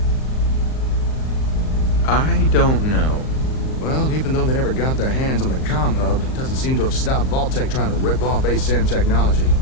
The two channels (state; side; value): late; right; 38 ms